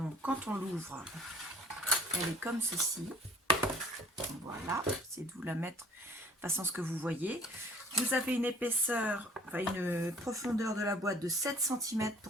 quand on l'ouvre, elle est comme ceci. Voilà, c'est de vous la mettre de façon à ce que vous voyez. Vous avez une épaisseur, enfin une profondeur de la boîte de 7 cm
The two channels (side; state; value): both; normal; correlation 0.53